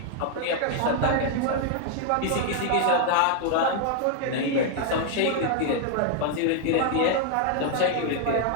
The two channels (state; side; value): different; both; correlation 0.00